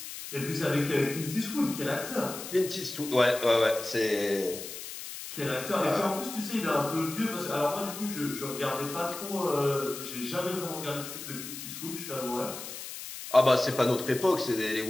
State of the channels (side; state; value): left; noise; hiss, 10 dB below the sound